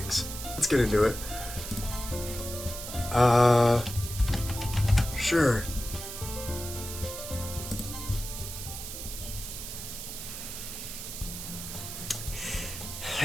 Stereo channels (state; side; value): noise; right; hiss, 8 dB below the sound